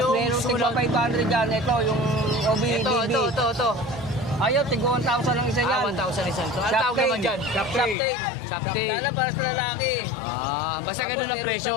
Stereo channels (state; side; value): drops out; right; at 8.0 s